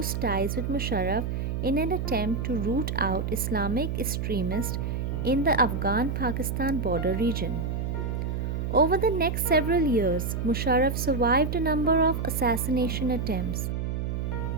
ties with Musharraf in an attempt to root out Islamic extremists in the Afghan-Pakistan border region. Over the next several years, Musharraf survived a number of assassination attempts.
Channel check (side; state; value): right; noise; hum, 2 dB below the sound